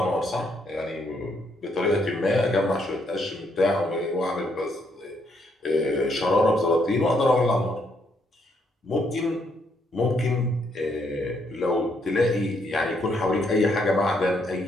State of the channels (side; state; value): both; normal; correlation 0.73